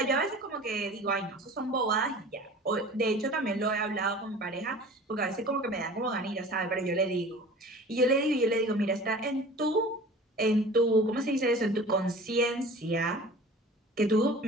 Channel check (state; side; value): normal; both; correlation 0.42